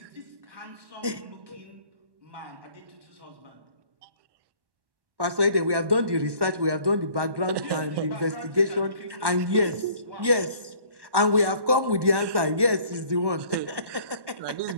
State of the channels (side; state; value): left; late; 1.1 ms